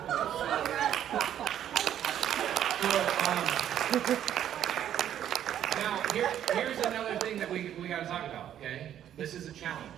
Now, here's another thing that we got to talk about, okay? This is a challenge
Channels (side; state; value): left; quieter; 10.6 dB